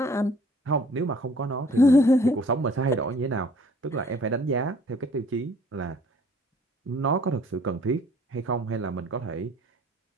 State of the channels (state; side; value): normal; both; correlation 0.55